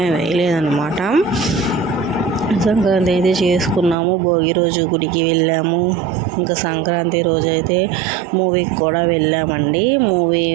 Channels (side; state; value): left; drops out; at 4.0 s